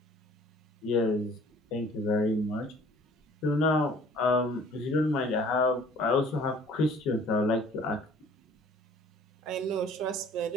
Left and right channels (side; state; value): both; normal; correlation 0.53